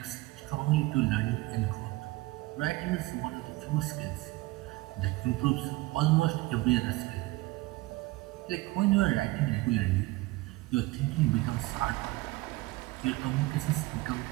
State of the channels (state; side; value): quieter; left; 20.3 dB